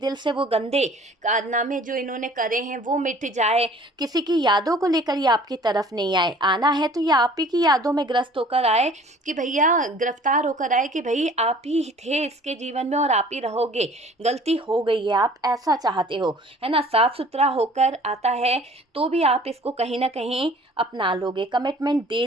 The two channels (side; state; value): both; normal; correlation 0.50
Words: से वो गंदे कारनामे जो इन्होंने करे हैं वो मिट जाए, किसी की यादों को लेकर ये आपकी तरफ नहीं आए। आना है तो ये आप ही की यादों में ग्रस्त होकर आए, कि भैया गिरफ्तार होकर आए कि भाई आप ही थे इसके जीवन में और आप ही रहोगे, गलती हो गई है, आप ऐसा चाहते हो, है ना। साफ सुथरा होकर आता है तो भी आप इसको कहीं ना कहीं अपना लोगे, कमिटमेंट दे